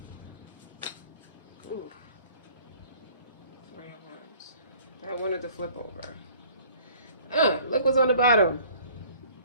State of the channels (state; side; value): inverted; both; correlation -0.53